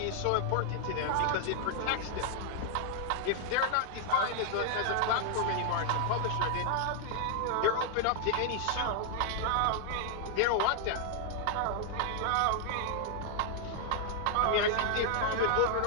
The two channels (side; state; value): both; different; correlation 0.00